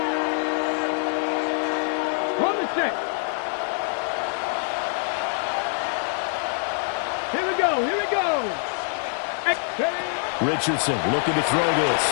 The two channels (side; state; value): right; silent; 56 dB below the other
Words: On the set. Here we go. Richardson looking to throw